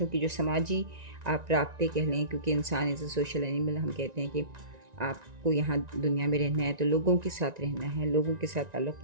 की जो समाजी आप राब्ते कह लें, क्योंकि इंसान इज़ अ सोशल एनिमल, हम कहते हैं कि आपको यहाँ दुनिया में रहना है तो लोगों के साथ रहना है, लोगों के साथ ताल्लुक़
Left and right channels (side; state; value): left; late; 1.9 ms